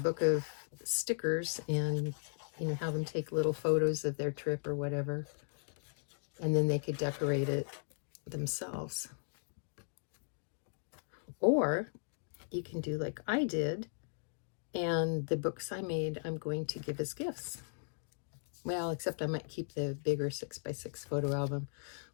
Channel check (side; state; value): right; silent; digital silence